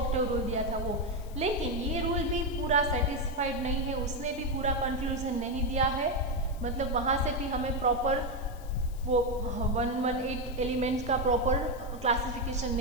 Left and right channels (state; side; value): noise; left; hiss, 23 dB below the sound